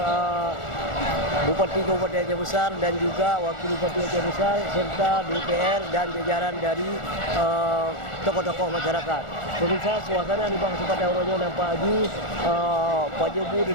Bupati Kabupaten Aceh Besar dan juga Wakil Bupati Aceh Besar serta DPR dan jajaran dari tokoh-tokoh masyarakat. Pemirsa, suasana di Sepadang Ronyo nampak lagi Pak Jobu dan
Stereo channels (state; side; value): late; right; 1.4 ms